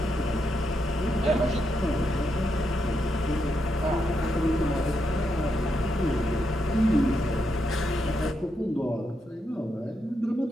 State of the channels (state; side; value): normal; both; correlation 0.82